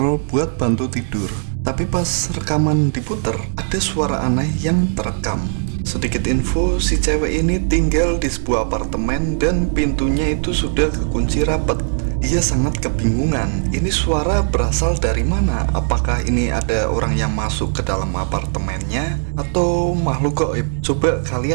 buat bantu tidur. Tapi pas rekaman diputer, ada suara aneh yang terekam. Sedikit info, si cewek ini tinggal di sebuah apartemen dan pintunya itu sudah kekunci rapat. Ia sangat kebingungan, ini suara berasal dari mana? Apakah ini ada orang yang masuk ke dalam apartemennya atau makhluk gaib? Coba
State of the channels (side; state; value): left; silent; 65 dB below the other